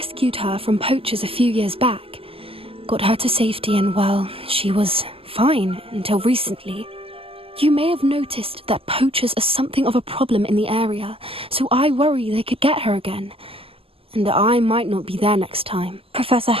her from poachers a few years back. Got her to safety and, well, she was fine until recently. You may have noticed that poachers are something of a problem in the area, so I worry they could get her again. And I might not be there next time. Professor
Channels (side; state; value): left; late; 0.27 ms